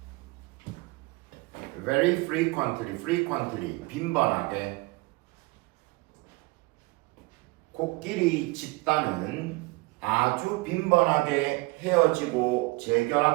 very frequently, 빈번하게. 코끼리 집단은 아주 빈번하게 헤어지고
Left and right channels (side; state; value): left; quieter; 24.0 dB